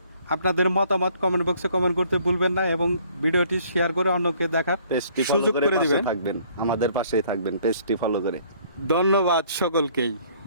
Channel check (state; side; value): inverted; both; correlation -0.60